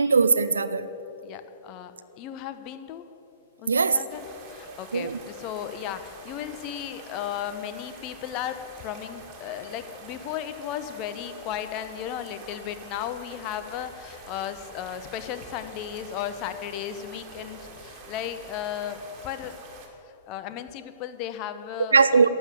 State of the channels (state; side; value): inverted; both; correlation -0.61